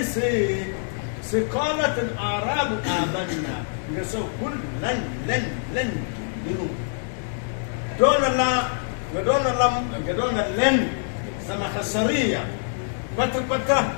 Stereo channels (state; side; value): silent; right; digital silence